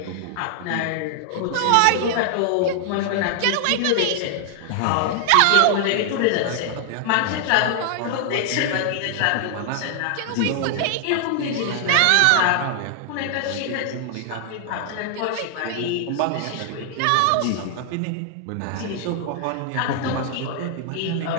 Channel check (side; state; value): both; different; correlation 0.00